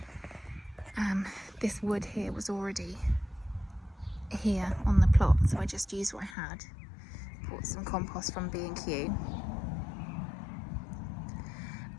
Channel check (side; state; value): right; drops out; at 6.4 s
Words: This wood here was already here on the plot, so I just used what I had. Bought some compost from B&Q.